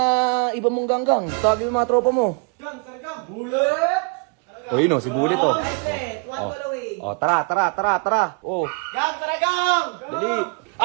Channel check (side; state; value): left; quieter; 35.6 dB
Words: iba mong ganggang? Tawagin yung mga tropa mo. Gang, sargang! Bullet! O yun oh, si Bullet oh. Islet, one ball away. Oh, tara. Oh, Gang, sargang! dali.